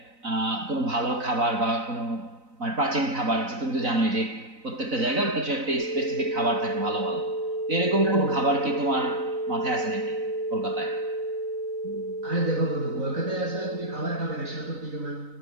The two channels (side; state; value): left; late; 3.9 ms